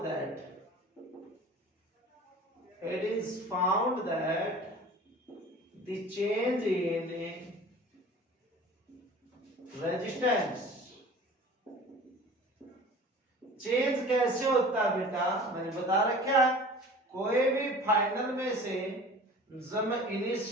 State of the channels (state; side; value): normal; both; correlation 0.42